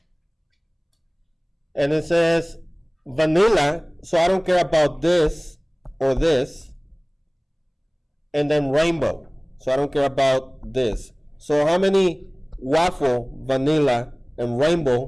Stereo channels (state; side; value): identical; both; correlation 1.00